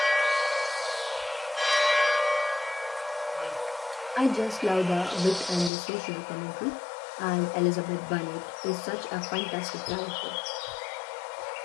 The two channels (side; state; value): right; drops out; at 5.7 s